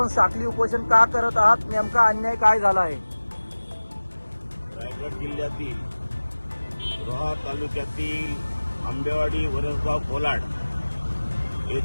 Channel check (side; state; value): both; inverted; correlation -1.00